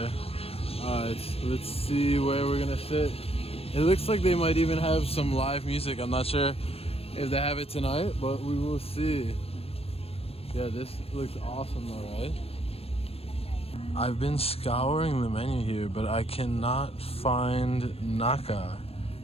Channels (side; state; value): right; late; 0.28 ms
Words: Alright, let's see where we're gonna sit. It looks like they might even have some live music. I'm not sure if they have it tonight, but we will see. Yeah, this looks awesome though, right? I've been scouring the menu here, but I cannot find Naga.